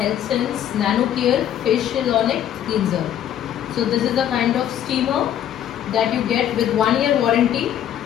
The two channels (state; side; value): quieter; right; 10.5 dB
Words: Nano Care Facial Ionic Cleanser. So this is a kind of steamer that you get with 1 year warranty,